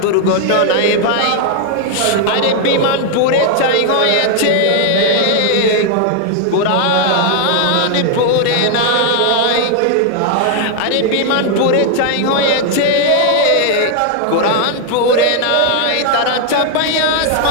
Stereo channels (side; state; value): both; different; correlation 0.00